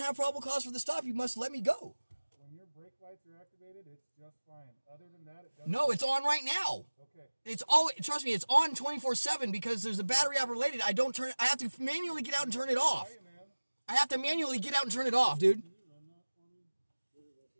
probable cause for the stop. You must let me go. When your brake lights are activated, it's just fine. Other than that, it doesn't. No, it's on right now. Okay. It's all, trust me, it's on 24/7 because there's a battery operated. I have to manually get out and turn it off. Hey, man. I have to manually get out and turn it off, dude.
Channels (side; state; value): both; inverted; correlation -1.00